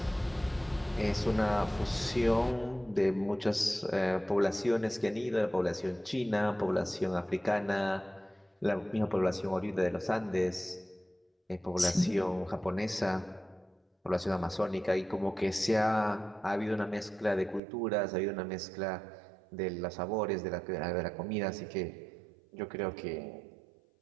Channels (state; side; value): drops out; left; at 17.6 s